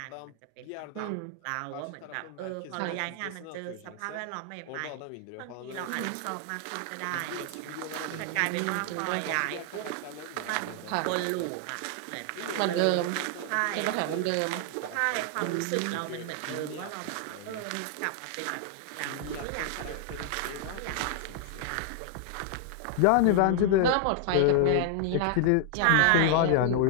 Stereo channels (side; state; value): both; different; correlation 0.00